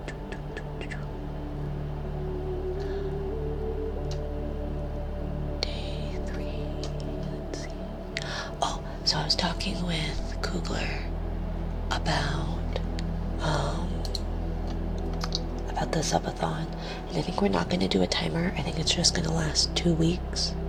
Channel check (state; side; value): identical; both; correlation 1.00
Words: Day 3, let's see. Oh, so I was talking with Kugler about the subathon, and I think we're not going to do a timer. I think it's just going to last 2 weeks.